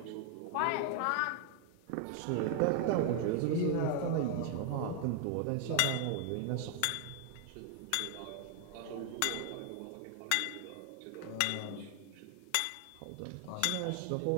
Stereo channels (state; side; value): different; both; correlation 0.00